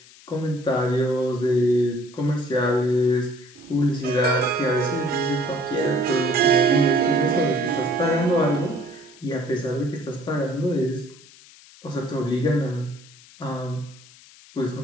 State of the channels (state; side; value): noise; left; hiss, 23 dB below the sound